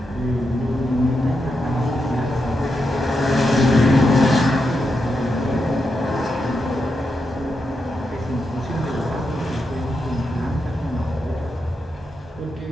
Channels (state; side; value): normal; both; correlation 0.85